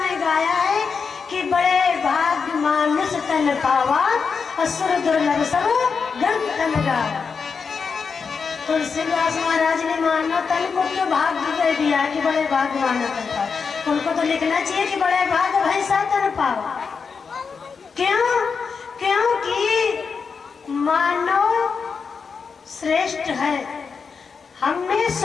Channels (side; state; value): right; quieter; 5.5 dB